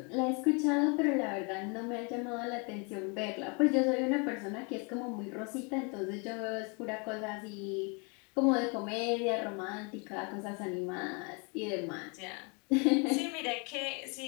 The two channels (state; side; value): quieter; right; 33.2 dB